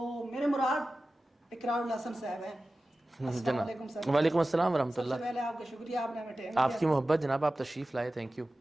میرے مراد اقرار الحسن صاحب ہیں۔ السلام علیکم سر۔ وعلیکم السلام ورحمۃ سب اللہ۔ سے پہلے آپ کا شکریہ، آپ نے ہمیں ٹائم آپ کی محبت جناب، آپ تشریف لائے، تھینک یو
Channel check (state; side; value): normal; both; correlation 0.95